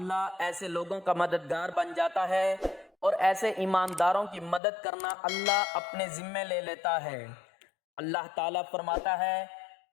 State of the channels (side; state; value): right; drops out; at 4.6 s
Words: ایسے لوگوں کا مددگار بن جاتا ہے اور ایسے ایمانداروں کی مدد کرنا اللہ اپنے ذمے لے لیتا ہے۔ اللہ تعالیٰ فرماتا ہے